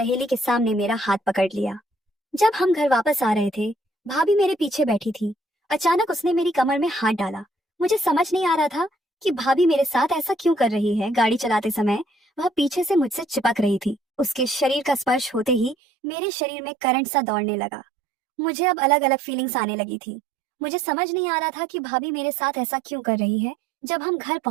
के सामने मेरा हाथ पकड़ लिया। जब हम घर वापस आ रहे थे, भाभी मेरे पीछे बैठी थी। अचानक उसने मेरी कमर में हाथ डाला। मुझे समझ नहीं आ रहा था कि भाभी मेरे साथ ऐसा क्यों कर रही है। गाड़ी चलाते समय वह पीछे से मुझसे चिपक रही थी। उसके शरीर का स्पर्श होते ही मेरे शरीर में करंट सा दौड़ने लगा। मुझे अब अलग अलग फीलिंग्स आने लगी थी। मुझे समझ नहीं आ रहा था कि भाभी मेरे साथ ऐसा क्यों कर रही है। जब हम घर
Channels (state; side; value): drops out; left; at 15.8 s